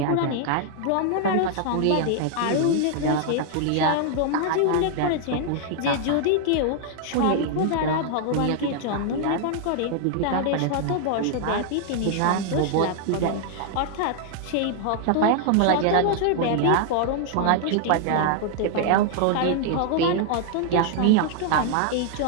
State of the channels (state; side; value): different; both; correlation 0.00